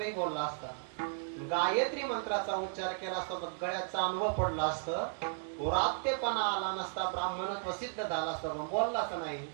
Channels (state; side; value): silent; left; digital silence